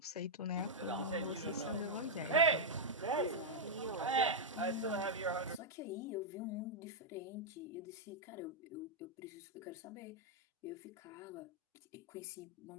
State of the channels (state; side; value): normal; both; correlation -0.04